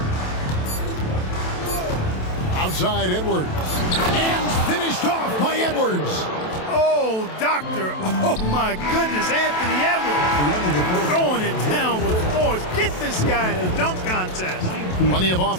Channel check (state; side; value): late; right; 27 ms